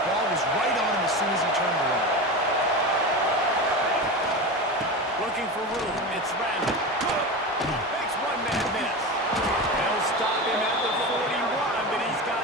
ball was right on him as soon as he turned around. Looking for room. It's random. Makes one man miss. They'll stop him at the 41, but he's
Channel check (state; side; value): normal; both; correlation 0.25